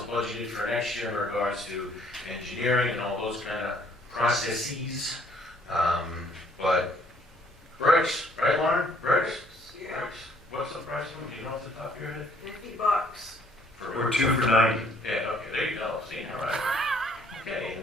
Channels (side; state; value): both; normal; correlation 0.62